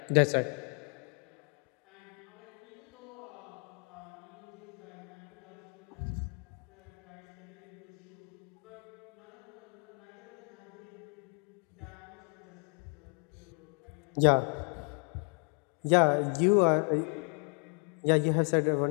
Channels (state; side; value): quieter; right; 39.4 dB